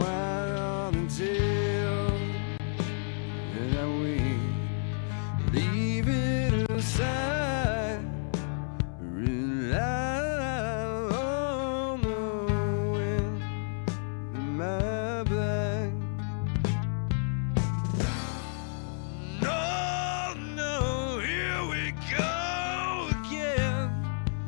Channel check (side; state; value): right; silent; 58 dB below the other